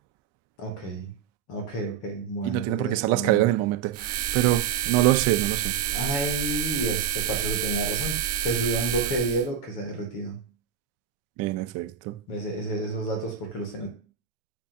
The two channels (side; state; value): left; quieter; 8.0 dB